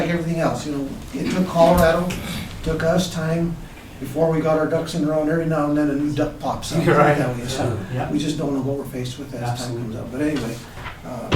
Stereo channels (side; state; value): both; identical; correlation 1.00